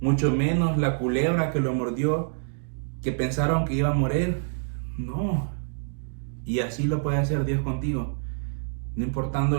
Mucho menos la culebra que lo mordió, que pensaron que iba a morir. No. Y así lo puede hacer Dios contigo. No importando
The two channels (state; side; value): silent; left; digital silence